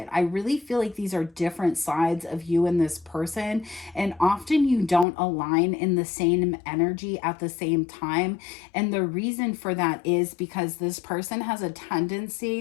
I really feel like these are different sides of you and this person, and often you don't align in the same energy at the same time. And the reason for that is because this person has a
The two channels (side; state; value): right; drops out; at 5.1 s